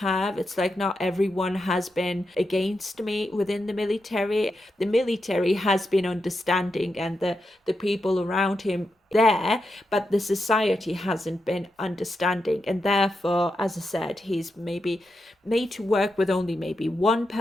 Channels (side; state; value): both; normal; correlation 0.86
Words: It's like not everyone has been against me within the military. The military has been understanding, and the people around him there, but the society hasn't been understanding, and therefore, as I said, he's maybe made to work with only maybe one